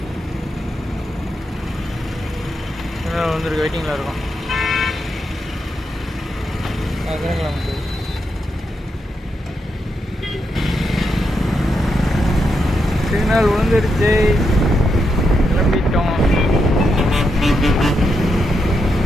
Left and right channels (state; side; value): normal; both; correlation 0.83